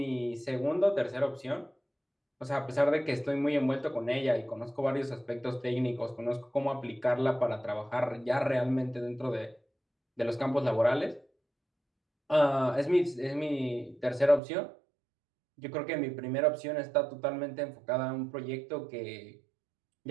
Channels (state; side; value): drops out; left; at 14.4 s